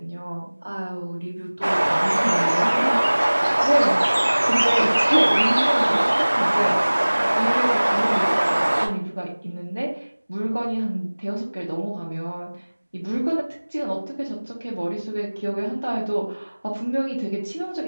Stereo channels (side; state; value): both; inverted; correlation -1.00